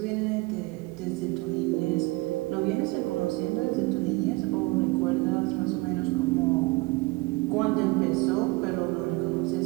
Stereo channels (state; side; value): quieter; left; 23.2 dB